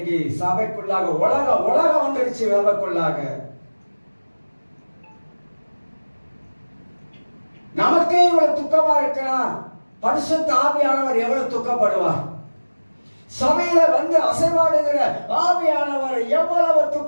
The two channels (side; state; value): both; inverted; correlation -1.00